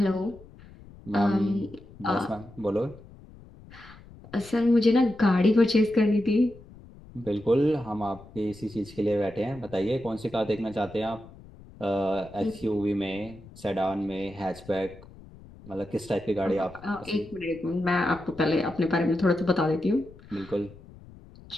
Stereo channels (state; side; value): noise; left; rumble, 20 dB below the sound